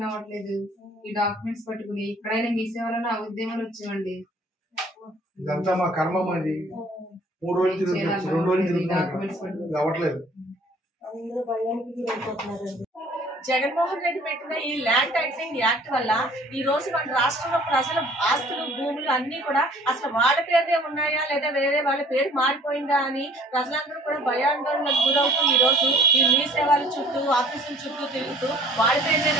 అవ్వట్లేదు. ఈ డాక్యుమెంట్స్ పట్టుకుని ఇక్కడైనా మీ సేవలను ఉద్యమాలు వచ్చామండి. ఇదంతా మా కర్మ. అది 3 రోజులు తిరుగుతున్నాం, 2 రోజులు తిరుగుతున్నాం, అవ్వట్లేదు. జగన్మోహన్ రెడ్డి పెట్టిన ఈ ల్యాండ్ టైటిలింగ్ యాక్ట్ వల్ల ఈ రోజు మన రాష్ట్రంలో ప్రజల ఆస్తులు భూములు అన్ని కూడా అసలు వాళ్ళ పేరునే ఉన్నాయా లేదా వేరే వాళ్ళ పేరు మారిపోయిందా అని ప్రజలందరూ కూడా భయాందోళనకు గురవుతూ ఈ రోజు ఈ మీ సేవల చుట్టూ ఆఫీసుల చుట్టూ తిరుగుతూ వాళ్ళ పేరునే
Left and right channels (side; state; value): both; normal; correlation 0.54